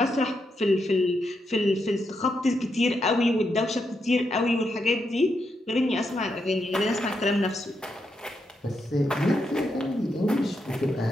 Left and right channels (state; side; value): normal; both; correlation 0.82